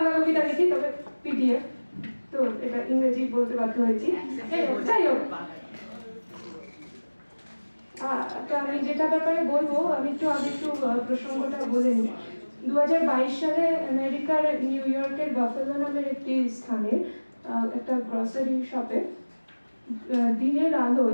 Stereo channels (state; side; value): inverted; both; correlation -1.00